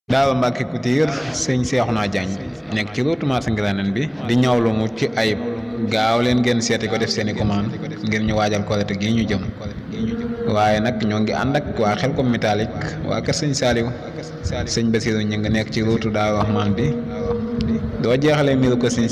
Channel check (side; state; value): both; identical; correlation 1.00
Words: Daal Mbàkke Couture sëñ Seexuna Jaañ nekk ci route marché Ngiraaneen bi di ñawlu mu ci ayib gaaw leen ngeen seeti ko def seeni commande ngir ñu waajal Korite gi ñu jëm. waaye nag ñoo ngi ànd ak waa Xelcom métallique waa kër sëñ Saaliw sëñ Basiru ñu ngi nekk ci route Daaru Rahmaan bi doo jeexalee miiru ko sëñ